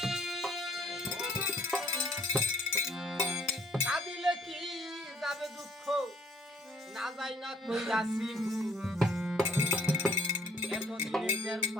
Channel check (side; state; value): both; normal; correlation 0.63